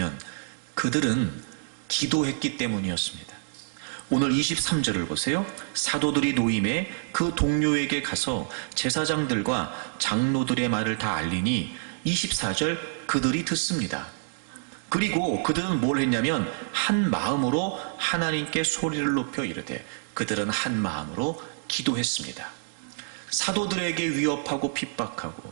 그들은 기도했기 때문이었습니다. 오늘 23절을 보세요. 사도들이 노임에 그 동료에게 가서 제사장들과 장로들의 말을 다 알리니 24절 그들이 듣습니다. 그리고 그들은 뭘 했냐면 한 마음으로 하나님께 소리를 높여 이르되 그들은 한 마음으로 기도했습니다. 사도들에게 위협하고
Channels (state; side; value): silent; left; digital silence